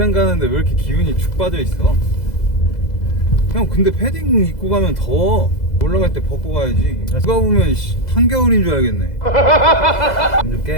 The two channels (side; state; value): right; late; 2.0 ms